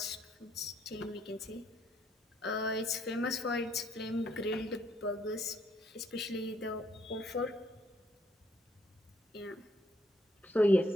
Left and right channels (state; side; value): normal; both; correlation 0.70